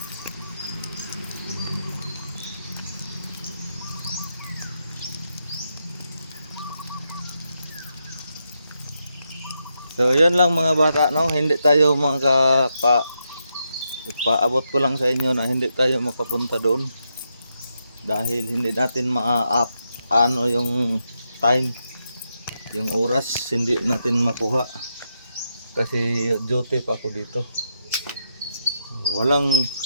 So, yun lang mga bata, no? Hindi tayo ipaabot ko lang sa inyo na hindi tayo makapunta doon. Dahil hindi natin ano yung time, yung oras, hindi natin makuha. Kasi duty pa ako dito. Walang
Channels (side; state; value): both; inverted; correlation -0.83